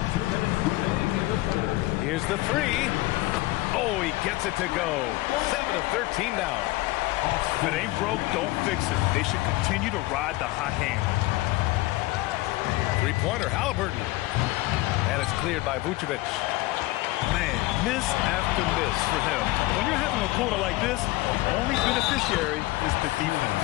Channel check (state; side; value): quieter; right; 19.6 dB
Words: 2 minutes remaining in the third. Here's the 3. Oh, he gets it to go. 7 of 13 now. If it ain't broke, don't fix it. They should continue to ride the hot hand. 3-pointer, Halliburton. And it's cleared by Vucevic. Man, Miss after miss for him. When you're having a quarter like this, the only beneficiary is the defense.